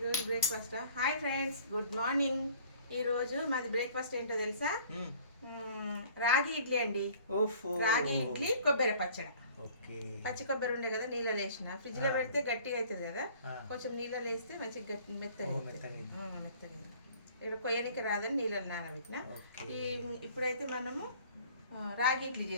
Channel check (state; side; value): inverted; both; correlation -0.52